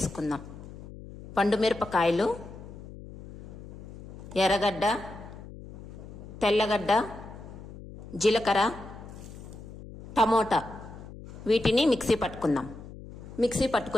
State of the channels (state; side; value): noise; left; hum, 15 dB below the sound